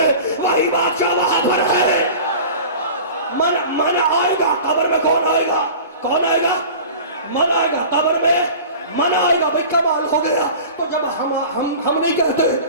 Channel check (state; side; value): inverted; both; correlation -0.38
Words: وہی بادشاہ وہاں پر ہے. من آئے گا قبر میں, کون آئے گا, کون آئے گا, من آئے گا قبر میں, من آئے گا. بھئی کمال ہو گیا. تو جب ہم نہیں